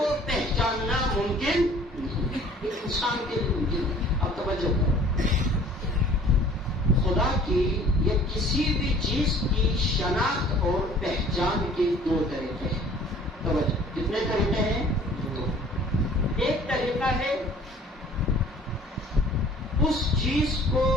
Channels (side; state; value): both; normal; correlation 0.51